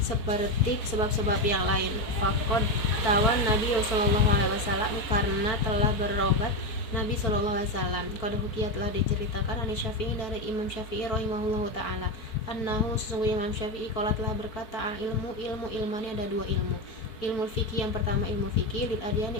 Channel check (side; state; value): right; late; 4.4 ms